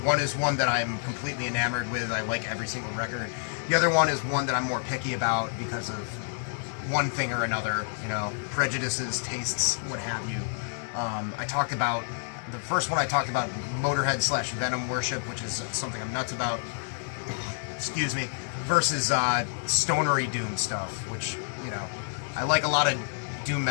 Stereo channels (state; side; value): silent; right; digital silence